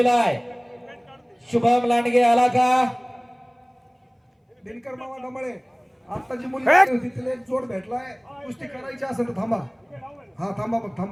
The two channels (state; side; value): identical; both; correlation 1.00